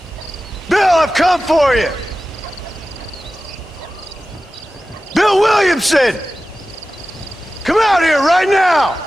I've come for you! Bill Williamson! Come out here right now!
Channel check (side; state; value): both; normal; correlation 0.95